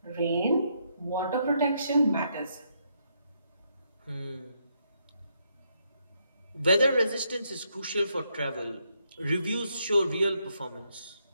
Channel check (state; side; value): inverted; both; correlation -0.76